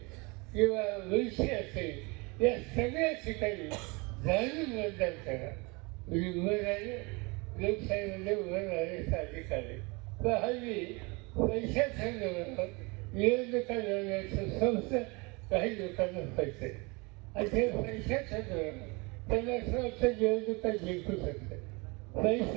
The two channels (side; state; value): left; quieter; 27.7 dB